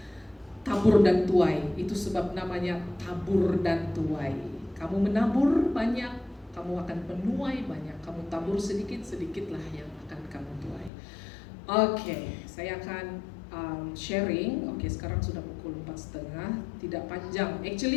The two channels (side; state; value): right; drops out; at 10.9 s